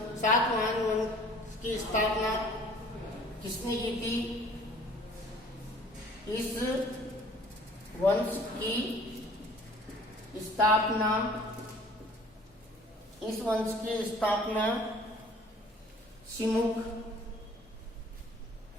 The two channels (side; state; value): both; normal; correlation 0.52